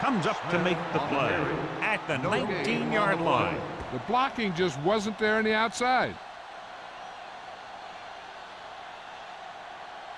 up to make the play at the 19-yard line. The blocking just wasn't there on the outside.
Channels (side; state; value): both; identical; correlation 1.00